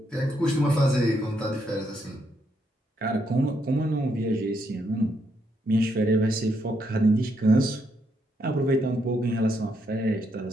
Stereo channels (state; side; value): normal; both; correlation 0.76